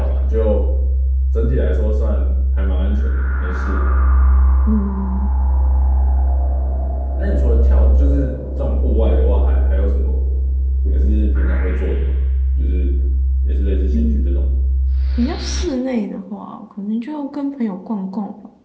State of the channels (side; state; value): both; identical; correlation 1.00